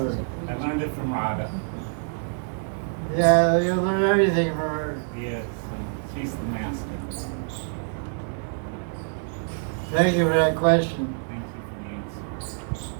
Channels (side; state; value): left; silent; 61 dB below the other